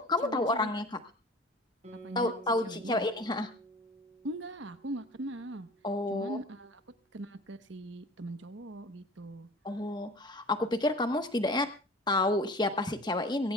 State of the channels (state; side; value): normal; both; correlation 0.42